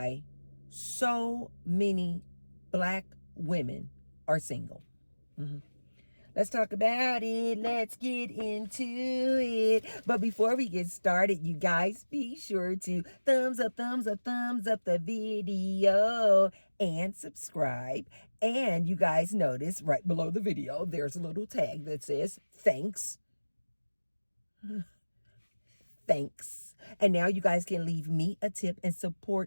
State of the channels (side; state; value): both; inverted; correlation -1.00